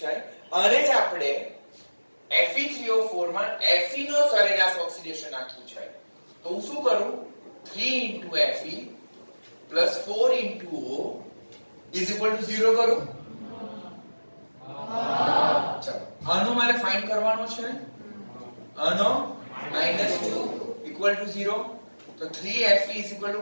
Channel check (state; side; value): inverted; both; correlation -1.00